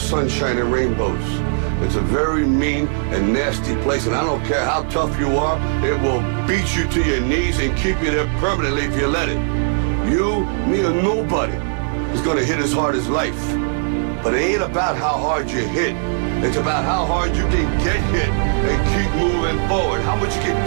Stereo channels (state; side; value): silent; left; digital silence